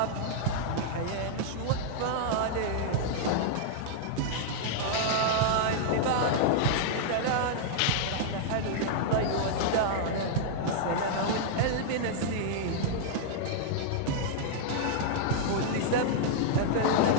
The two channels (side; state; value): both; different; correlation -0.01